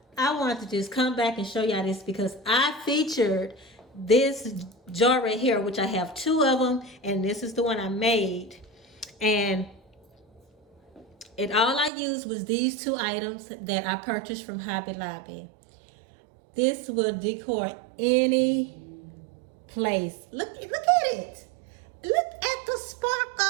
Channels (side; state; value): left; drops out; at 11.9 s